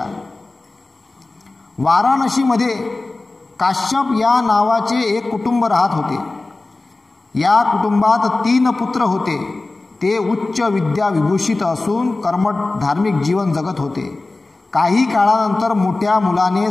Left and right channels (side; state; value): right; quieter; 3.2 dB